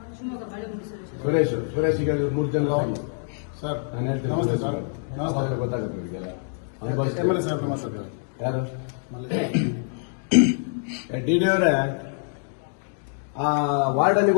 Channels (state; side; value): silent; right; digital silence